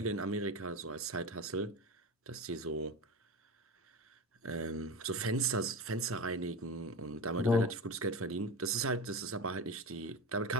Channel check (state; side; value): normal; both; correlation 0.25